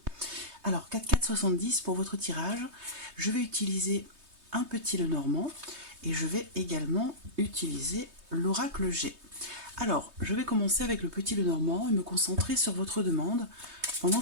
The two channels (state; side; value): late; left; 3.2 ms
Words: Alors, 4470 pour votre tirage, je vais utiliser un petit Lenormand et je vais également utiliser l'oracle G. Alors, je vais commencer avec le petit Lenormand et me concentrer sur votre demande pendant